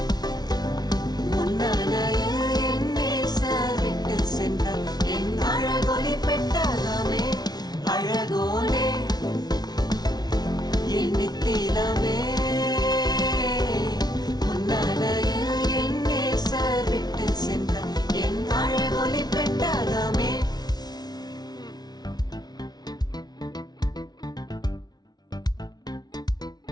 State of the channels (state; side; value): late; right; 0.19 ms